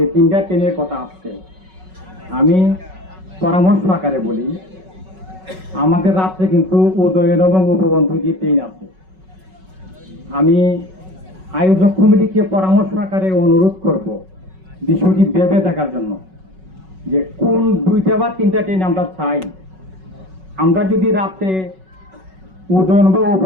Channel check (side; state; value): left; late; 5.4 ms